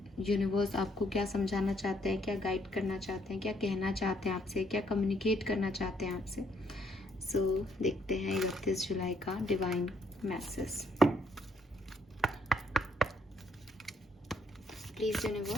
यूनिवर्स आपको क्या समझाना चाहते हैं, क्या गाइड करना चाहते हैं, क्या कहना चाहते हैं आपसे, क्या कम्युनिकेट करना चाहते हैं आपसे। सो देखते हैं 31 जुलाई का divine message. Please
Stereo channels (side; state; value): both; normal; correlation 0.71